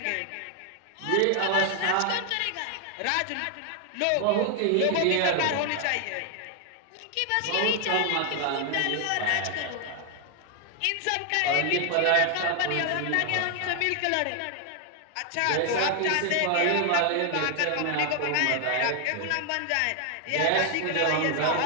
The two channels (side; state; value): both; different; correlation 0.00